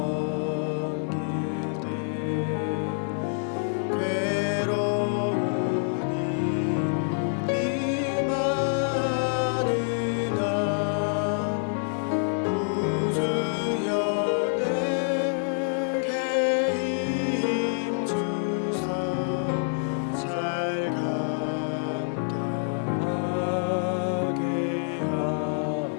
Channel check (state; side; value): silent; right; 60 dB below the other